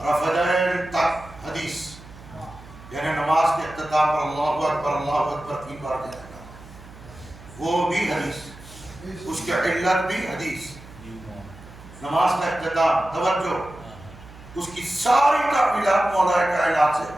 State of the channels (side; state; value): right; noise; hum, 19 dB below the sound